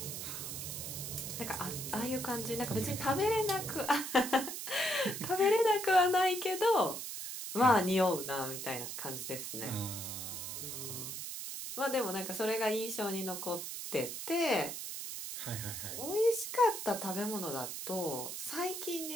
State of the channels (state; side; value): noise; right; hiss, 6 dB below the sound